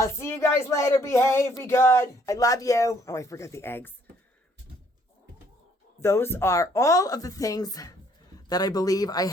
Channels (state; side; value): normal; both; correlation 0.64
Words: see you guys later. Behave. Be good. I love you. Oh, I forgot the eggs. Those are all of the things that I believe I